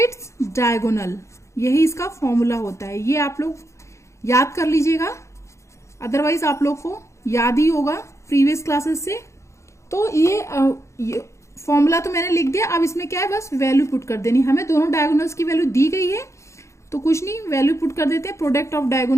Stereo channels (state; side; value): late; right; 0.14 ms